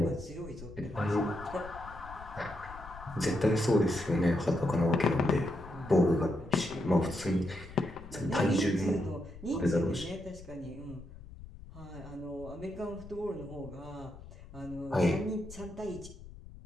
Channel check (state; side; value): noise; left; rumble, 16 dB below the sound